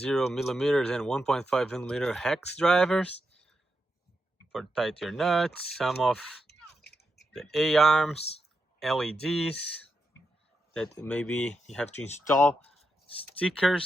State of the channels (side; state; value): both; normal; correlation 0.86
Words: millimeters and 1.5 millimeter hex drivers for tight your nuts. Some of the A-arms, LEDs that maybe you have to install,